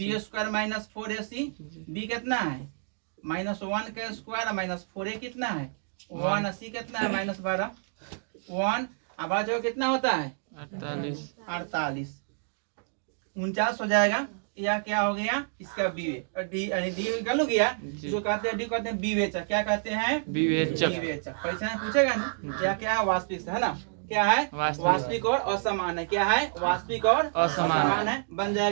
square minus 4ac। B कितना है -1 का स्क्वायर माइनस 4a कितना है 1 सी कितना है -12 1 अब आ जाओ कितना होता है 48 49 हो जाएगा। या क्या हो गया इसका बी वे डी यानी डी निकल गया जो कहते हैं डी कहते हैं विवेचक क्या कहते हैं विवेचक विवेचक। परीक्षा में पूछेगा ना क्या क्या है वास्तविक है ना क्या है वास्तविक और असमान है क्या है वास्तविक और असमान है बन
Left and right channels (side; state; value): left; silent; digital silence